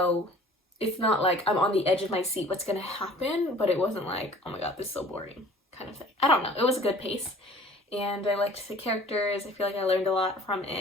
it's not like I'm on the edge of my seat what's gonna happen, but it wasn't like, oh my god, this is so boring kind of thing. I don't know, it was a good pace, and I liked the characters. I feel like I learned a lot from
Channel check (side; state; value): both; normal; correlation 0.49